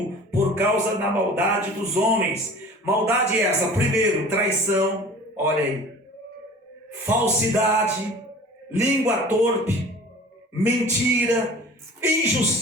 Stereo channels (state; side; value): normal; both; correlation 0.43